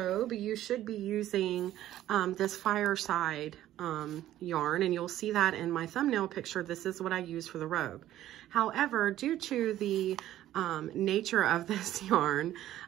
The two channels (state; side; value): quieter; left; 13.3 dB